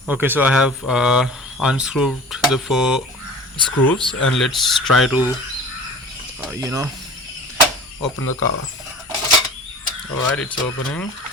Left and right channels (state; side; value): normal; both; correlation 0.40